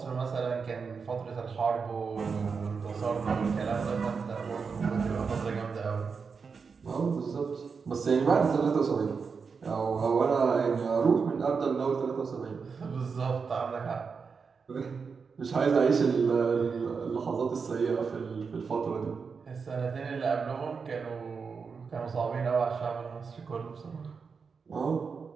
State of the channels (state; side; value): quieter; left; 5.4 dB